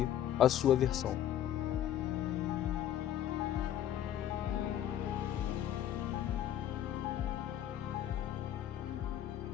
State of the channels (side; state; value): right; quieter; 11.3 dB